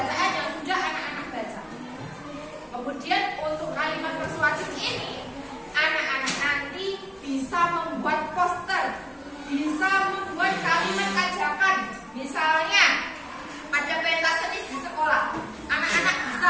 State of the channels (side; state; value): both; identical; correlation 1.00